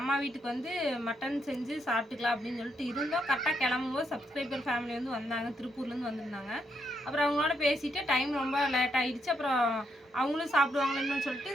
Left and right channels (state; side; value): normal; both; correlation 0.78